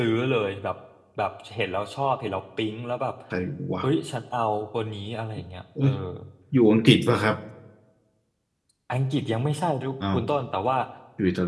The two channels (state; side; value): identical; both; correlation 1.00